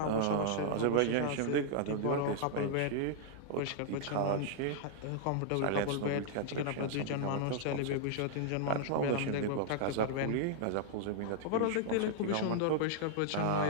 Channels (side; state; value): both; different; correlation -0.01